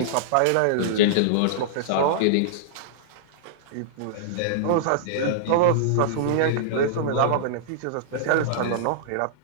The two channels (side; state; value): both; different; correlation -0.02